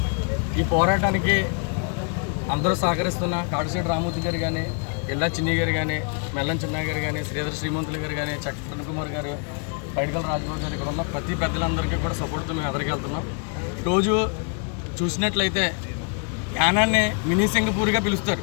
ఈ పోరాటానికి అందరూ సహకరిస్తున్న కాకశెట్టి రామూర్తి గారు కానీ, ఇల్లా చిన్ని గారు కానీ, మెల్లం చిన్న గారు కానీ, శ్రీధర్ శ్రీమంతులు గారు కానీ, చక్రవర్తి కుమార్ గారు, పైడికల రాజగోపాల్ గారు ఇక్కడ ఉన్న ప్రతి పెద్దలందరికీ కూడా సపోర్ట్తో మేము ఎదురుకెళ్తున్నాం. రోజు చూసినట్లయితే యానాన్ని మినీ సింగపూర్గా పిలుస్తారు.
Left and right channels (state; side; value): quieter; right; 38.3 dB